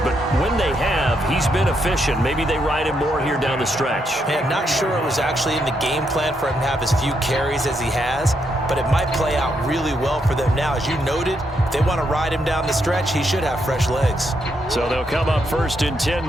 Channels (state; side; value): normal; both; correlation 0.79